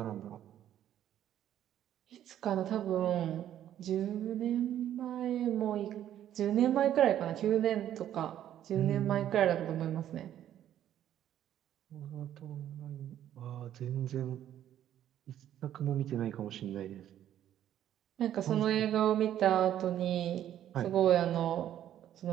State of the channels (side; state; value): left; quieter; 11.2 dB